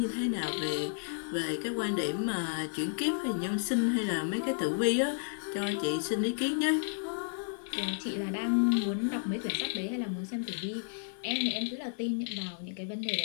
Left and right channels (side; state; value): right; silent; 56 dB below the other